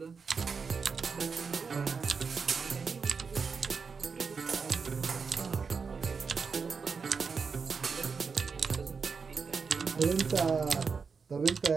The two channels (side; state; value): left; quieter; 5.3 dB